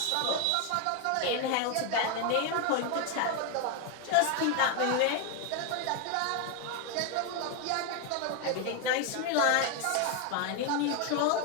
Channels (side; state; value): both; different; correlation 0.01